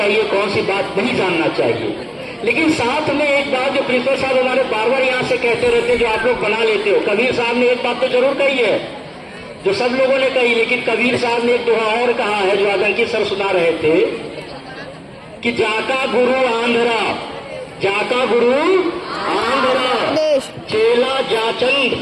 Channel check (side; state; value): both; identical; correlation 1.00